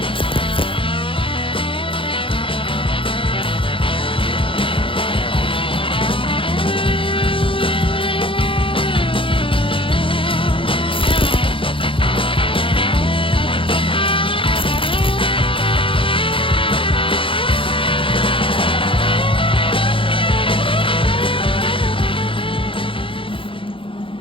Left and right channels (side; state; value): right; late; 0.25 ms